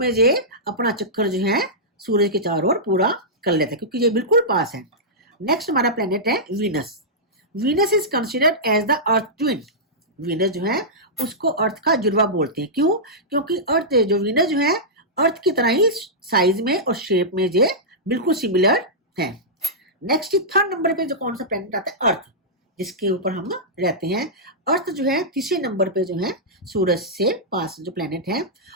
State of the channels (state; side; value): normal; both; correlation -0.13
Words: ये अपना चक्कर जो है सूरज के चारों ओर पूरा कर लेते हैं, क्योंकि ये बिल्कुल पास है। नेक्स्ट हमारा प्लेनेट है Venus. Venus is considered as the earth twin. Venus जो है उसको अर्थ का जुड़वा बोलते हैं। क्यों? क्योंकि अर्थ जो वीनस जो है अर्थ की तरह ही साइज में और शेप में ये बिल्कुल सिमिलर है। नेक्स्ट 3rd नंबर पे जो कौन सा प्लेनेट आता है? अर्थ, जिसके ऊपर हम रहते हैं। अर्थ जो है 3रे नंबर पे जो है सूरज से पास जो प्लेनेट है,